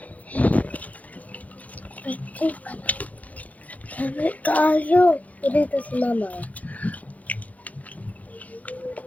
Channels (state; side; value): late; right; 0.073 ms